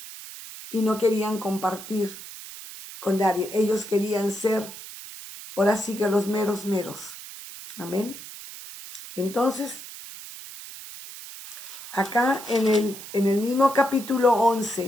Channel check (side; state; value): right; noise; hiss, 13 dB below the sound